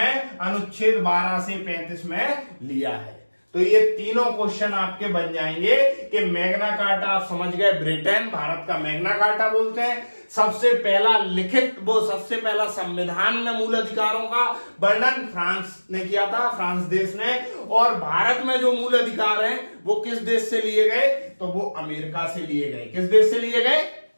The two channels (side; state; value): both; inverted; correlation -1.00